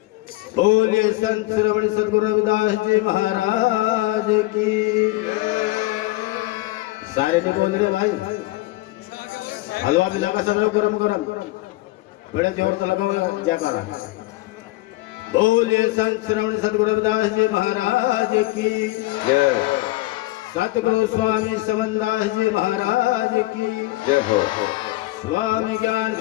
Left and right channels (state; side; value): quieter; right; 19.4 dB